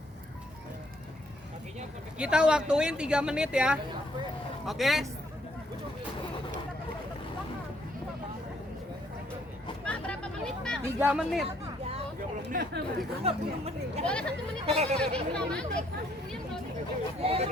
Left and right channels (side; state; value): both; normal; correlation 0.68